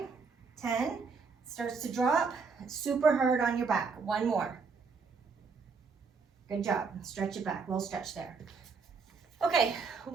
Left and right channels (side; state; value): left; quieter; 5.0 dB